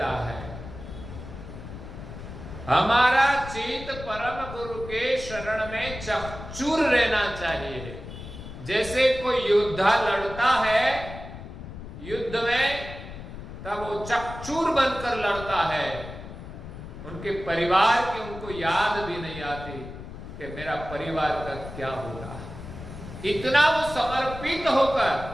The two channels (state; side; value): noise; left; rumble, 12 dB below the sound